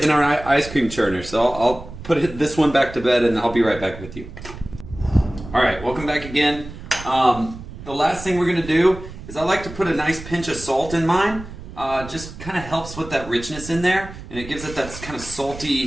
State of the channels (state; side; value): noise; right; rumble, 13 dB below the sound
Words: in our ice cream churner. So I'll put this one back to bed and I'll be right back with you. All right, welcome back again. The last thing we're going to do is I like to put a nice pinch of salt in mine. Just kind of helps with that richness in there, and it gives it that kind of